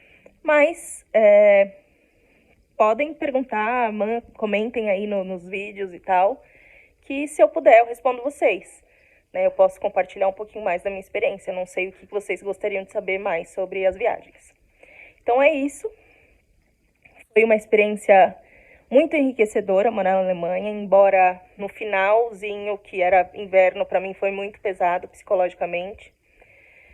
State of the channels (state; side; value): identical; both; correlation 1.00